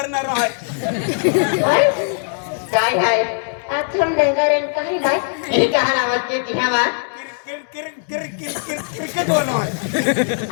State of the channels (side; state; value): right; silent; 66 dB below the other